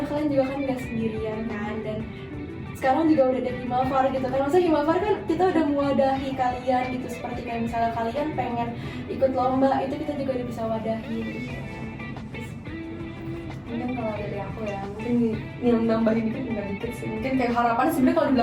kalian juga kan nggak sendirian kan. Dan sekarang juga udah ada Himafar gitu kan, maksudnya Himafar kan kita udah mewadahi kalian gitu, seperti kayak misalnya kalian pengen ikut lomba, itu kita juga udah bisa wadahi gitu. Mungkin kalau dari aku ya, mungkin nambahin dikit sih. Mungkin kayak harapan, sebenarnya kalau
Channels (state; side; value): identical; both; correlation 1.00